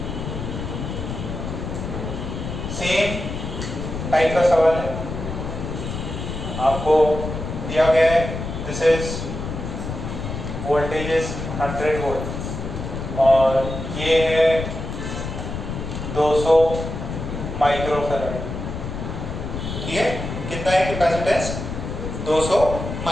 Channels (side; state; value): left; noise; rumble, 6 dB below the sound